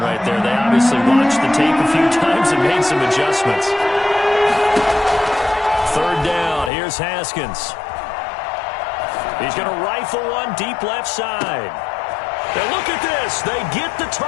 right there. They obviously watched the tape a few times and made some adjustments. Third down. Here's Haskins. He's going to rifle one deep left side. And look at this. They get the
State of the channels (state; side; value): drops out; right; at 6.7 s